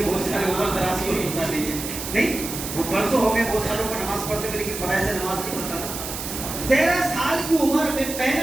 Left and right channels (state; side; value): noise; right; hiss, 7 dB below the sound